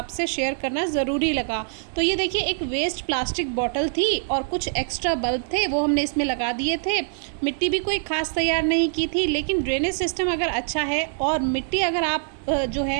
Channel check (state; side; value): silent; left; 62 dB below the other